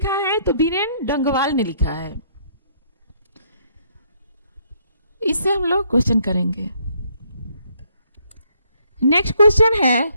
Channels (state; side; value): inverted; both; correlation -0.68